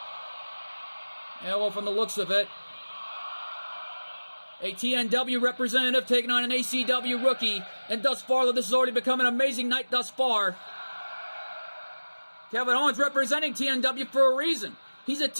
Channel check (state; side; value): inverted; both; correlation -1.00